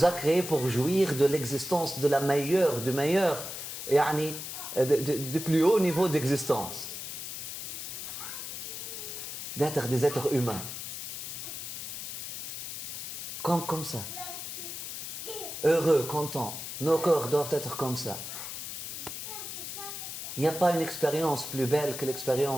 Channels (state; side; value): noise; left; hiss, 7 dB below the sound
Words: a créés pour jouir de l'existence de la meilleure, du meilleur, du plus haut niveau d'existence. D'être des êtres humains. Comme ça. Heureux, contents. Nos corps doivent être comme ça. Il n'y a pas une expérience plus belle que